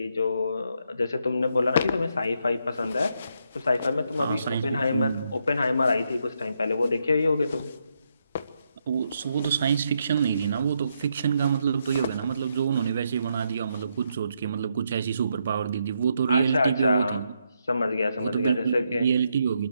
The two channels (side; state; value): both; inverted; correlation -0.79